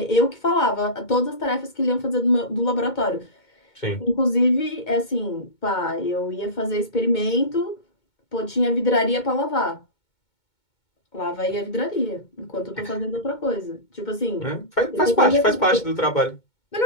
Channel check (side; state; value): right; late; 2.2 ms